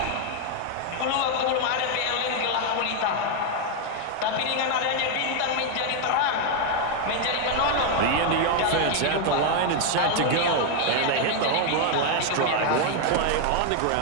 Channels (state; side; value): different; both; correlation 0.00